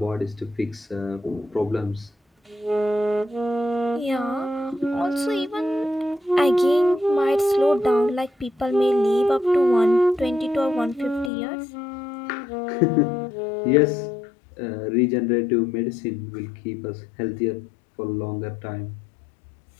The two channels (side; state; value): right; drops out; at 11.3 s